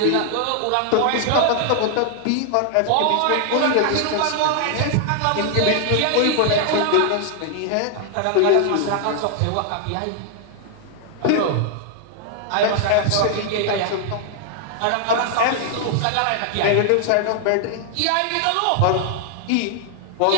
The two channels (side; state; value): both; different; correlation 0.00